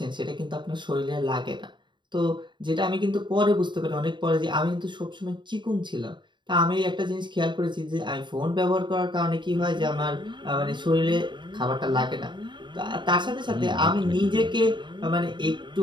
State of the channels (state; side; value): late; left; 0.23 ms